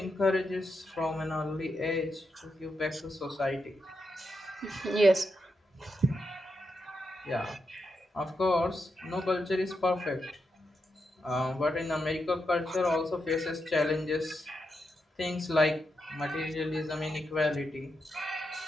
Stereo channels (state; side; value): normal; both; correlation 0.85